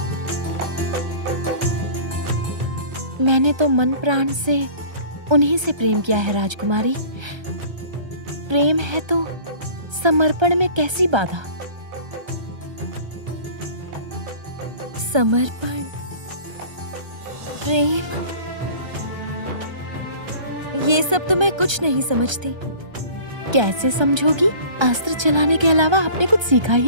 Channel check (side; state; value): left; late; 1.3 ms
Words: मैंने तो मन प्राण से उन्हीं से प्रेम किया है राजकुमारी। प्रेम है तो समर्पण में कैसी बाधा? समर्पण, प्रेम, ये सब तो मैं कुछ नहीं समझती। कैसे समझोगी? अस्त्र चलाने के अलावा आपने कुछ सीखा